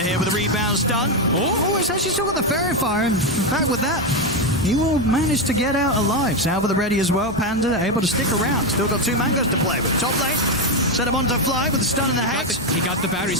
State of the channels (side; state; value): both; normal; correlation 0.08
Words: with the rebounds done. Oh, it's actually still got the Fairy Fire. In fact, with that, he will manage to get out alive. Salva the ready as well. Panda able to stick around. Still got 2 mangoes to play with. Top lane. Set him onto Fly with the stun and the hex. He got the battery